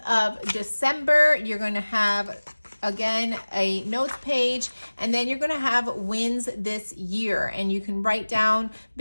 of December, you're going to have again a notes page, and then you're going to have wins this year, and you can write down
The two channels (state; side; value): inverted; both; correlation -1.00